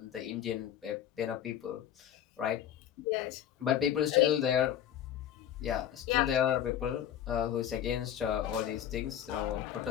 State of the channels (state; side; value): quieter; right; 10.4 dB